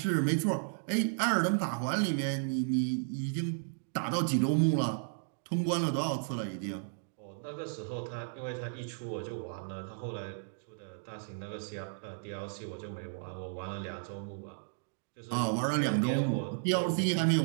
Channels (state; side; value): silent; left; digital silence